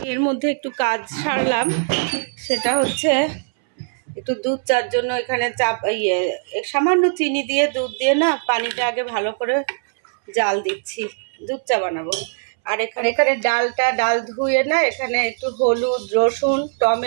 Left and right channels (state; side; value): silent; left; 65 dB below the other